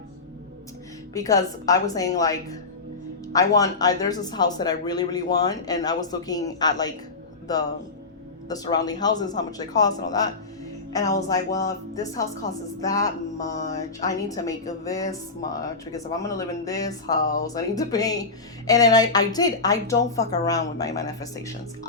because I was saying like, there's this house that I really, really want, and I was looking at like the surrounding houses, how much they cost and all that. And I was like, well, if this house costs that much, I need to make this much, because if I'm gonna live in this house, I need to pay. And then I don't fuck around with my manifestations.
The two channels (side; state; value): right; quieter; 3.9 dB